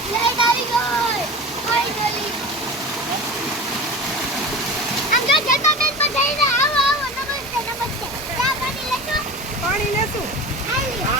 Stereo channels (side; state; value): both; normal; correlation 0.31